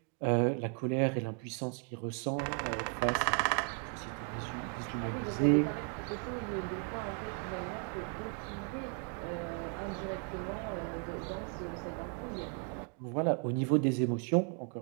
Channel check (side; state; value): left; quieter; 39.8 dB